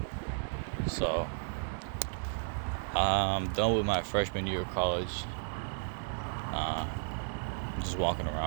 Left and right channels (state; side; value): silent; left; digital silence